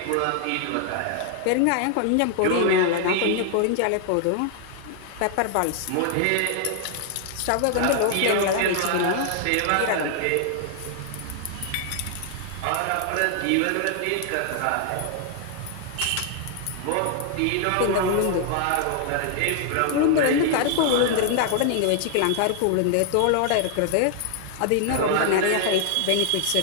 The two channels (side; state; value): both; different; correlation 0.00